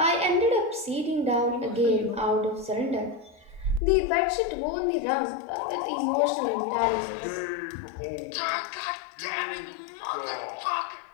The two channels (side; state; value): right; drops out; at 3.8 s